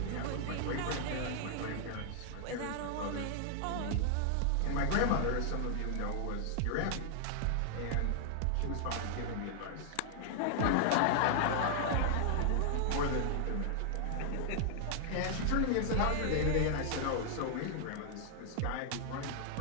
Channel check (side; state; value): both; different; correlation -0.01